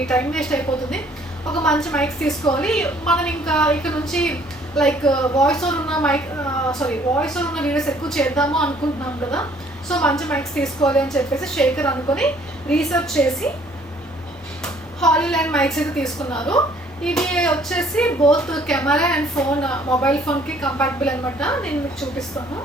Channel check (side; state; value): both; normal; correlation 0.60